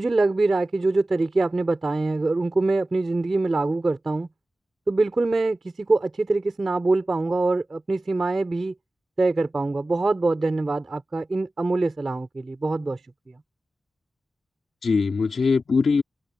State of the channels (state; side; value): normal; both; correlation 0.95